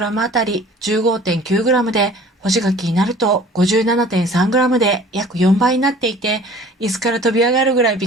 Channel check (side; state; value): both; normal; correlation 0.48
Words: あたり 15.9g で、干し柿になると 57.3g で約4倍になっていて、椅子から飛び上がるぐらいび